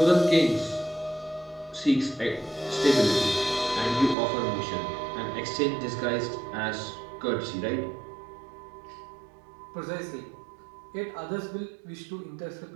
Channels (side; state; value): left; drops out; at 4.2 s